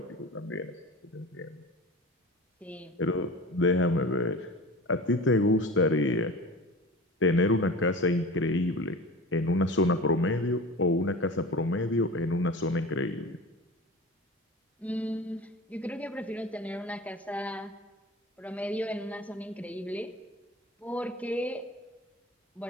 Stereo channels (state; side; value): normal; both; correlation 0.35